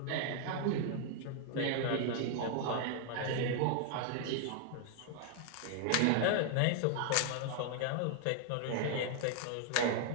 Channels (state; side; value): different; both; correlation 0.00